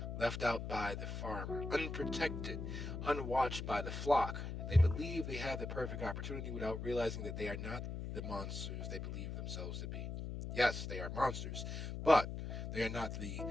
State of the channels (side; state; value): left; noise; hum, 5 dB below the sound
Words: left out by the farmer, unprotected, unwatched by the flock. They believe they have the perfect opportunity without realizing that they are not the monsters they believe themselves to be. Yes, they are monsters, but they are not the